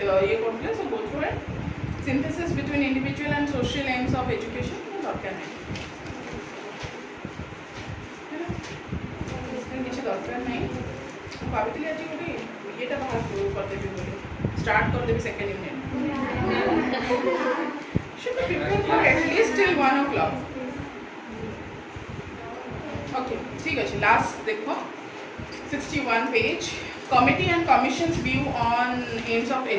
go through it. Synthesis between individual and social aims of education. Start कर देवी second unit. Should be prepared for at least till 1 o'clock. Okay, ठीक है. Last देखो 61 page. Committee and Commission's view on aims of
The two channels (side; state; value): both; identical; correlation 1.00